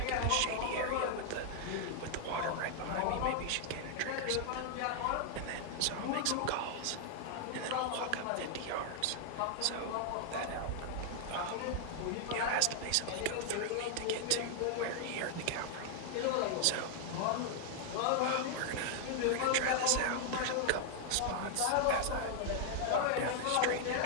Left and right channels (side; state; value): both; different; correlation 0.00